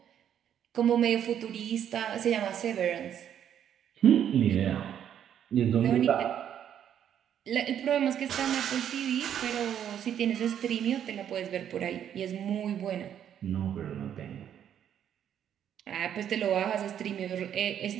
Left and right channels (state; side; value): quieter; left; 9.6 dB